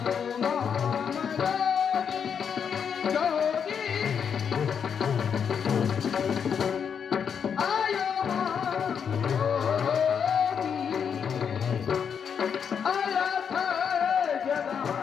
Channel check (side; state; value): right; quieter; 7.2 dB